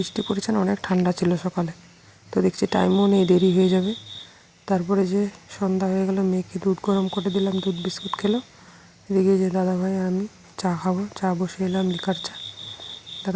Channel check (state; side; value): identical; both; correlation 1.00